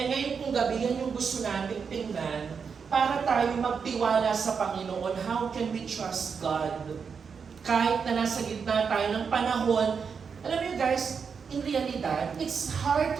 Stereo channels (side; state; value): left; quieter; 6.0 dB